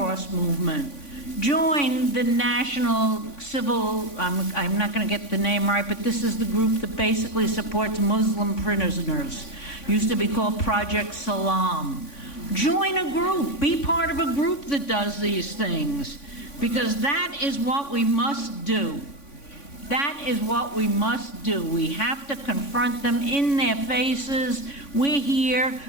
movement. Join the National Civil, I'm not going to get the name right, but this is the group that basically supports Muslim prisoners. Used to be called Project Salam. Join a group. Be part of a group that does these things, because that is what we must do. That is what we must do. We have to confront them in their faces. We're here.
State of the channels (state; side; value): late; right; 3.5 ms